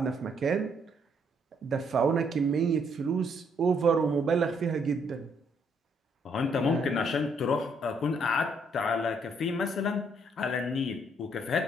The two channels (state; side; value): normal; both; correlation 0.69